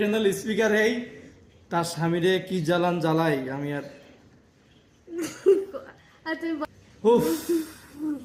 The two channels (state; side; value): identical; both; correlation 1.00